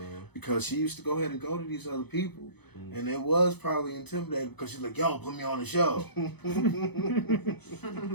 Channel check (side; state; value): right; late; 0.98 ms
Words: Because she used to go ahead and go to these other people. And it was probably intimidating because she's like, yo, put me on the show. And